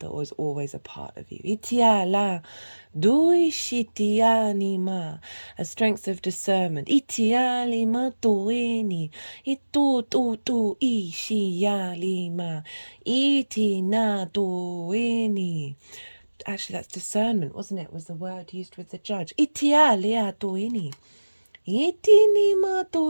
that was always a part of you. Itiala, duishitianima, a strength of discernment. Itialima duini, itu tu ishialima, itina duini. Actually, that's discernment, wasn't it? Was the word used with the judge. Itialia duini. I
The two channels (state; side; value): inverted; both; correlation -1.00